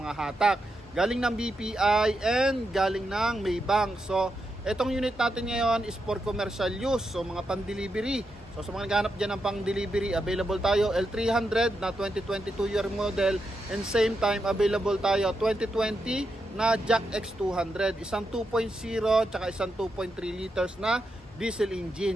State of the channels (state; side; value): normal; both; correlation 0.85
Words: mga hatak, galing ng BPI and galing ng Maybank. So itong unit natin ngayon is for commercial use, so mga pan-delivery. So sa mga naghahanap dyan ng pang-delivery, available tayo L300 na 2022 year model and same time available tayo 2020 na Jack X200, isang 2.0 tsaka isang 2.3 liters na diesel